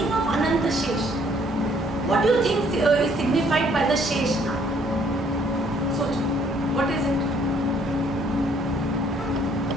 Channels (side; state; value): both; normal; correlation 0.64